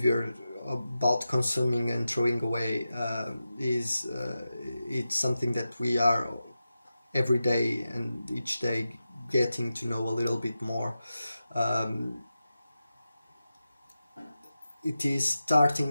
about consuming and throwing away is it's something that we are every day and each day getting to know a little bit more. Um, it is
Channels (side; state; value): both; inverted; correlation -0.92